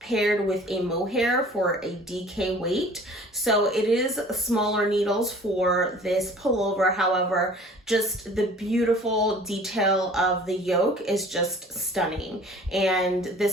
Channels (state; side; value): normal; both; correlation 0.48